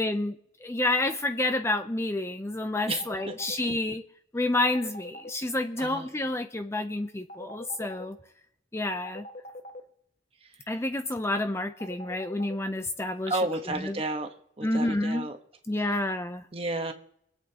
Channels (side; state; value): both; normal; correlation 0.51